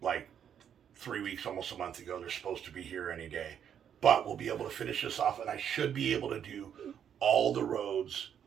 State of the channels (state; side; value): quieter; left; 8.8 dB